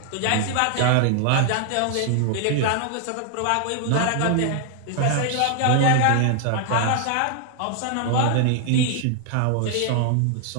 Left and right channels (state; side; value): different; both; correlation 0.00